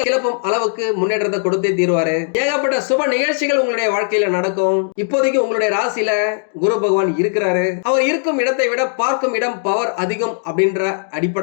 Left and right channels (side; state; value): right; silent; digital silence